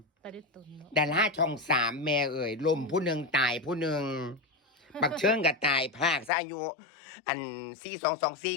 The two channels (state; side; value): drops out; right; at 6.3 s